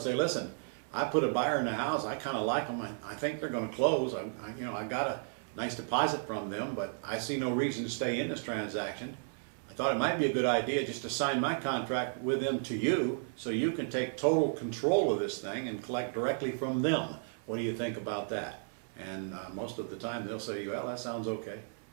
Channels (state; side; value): silent; left; 55 dB below the other